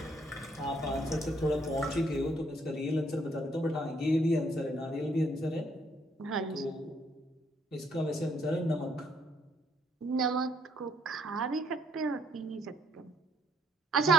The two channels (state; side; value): normal; both; correlation 0.68